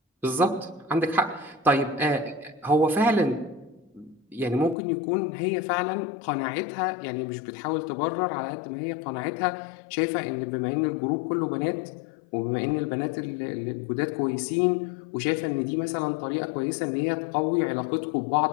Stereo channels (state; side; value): drops out; right; at 4.8 s